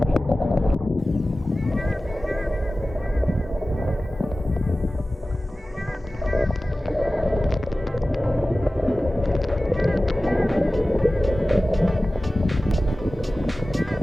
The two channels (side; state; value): both; normal; correlation 0.96